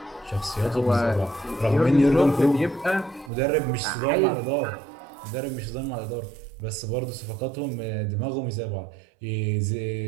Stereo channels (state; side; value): drops out; left; at 3.3 s